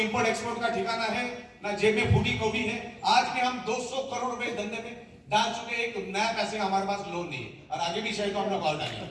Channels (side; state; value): both; identical; correlation 1.00